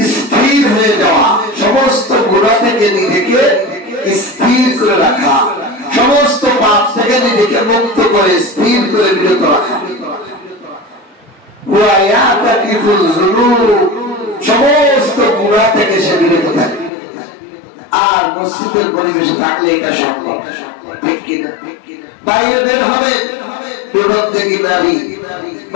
স্থির হয়ে যাওয়া, সমস্ত গুনাহ থেকে নিজেকে স্থির করে রাখা, সমস্ত পাপ থেকে নিজেকে মুক্ত করে স্থির করে বিরত রাখা। সমস্ত গুনাহ থেকে সে বিরত থাকে। আর মসজিদের পরিবেশে থাকলে এটা সম্ভব, ঠিক কিনা? বাইরে বের হবে বিপজ্জনক নারী,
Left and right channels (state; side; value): drops out; right; at 16.9 s